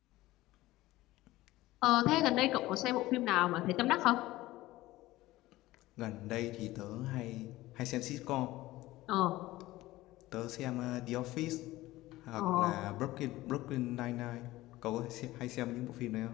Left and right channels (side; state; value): right; quieter; 17.5 dB